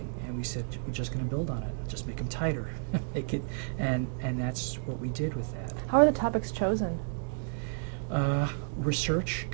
and we said we're just going to build on it, just make them tighter, make it, and that's what we did with that. How are the topics chosen? Research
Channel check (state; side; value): silent; left; digital silence